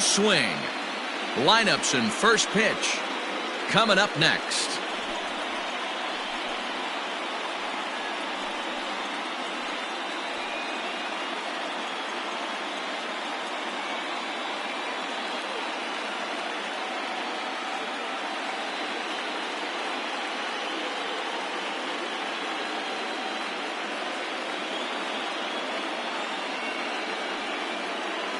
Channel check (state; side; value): identical; both; correlation 1.00